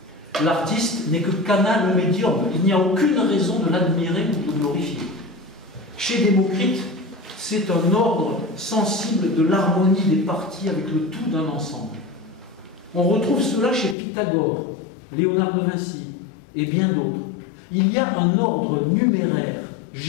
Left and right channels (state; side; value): drops out; right; at 14.0 s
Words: L'artiste n'est que canal médium, il n'y a aucune raison de l'admirer ou de glorifier. Chez Démocrite, c'est un ordre sensible de l'harmonie des parties avec le tout d'un ensemble. On retrouve cela chez Pythagore, Léonard de Vinci et bien d'autres. Il y a un ordre numéraire,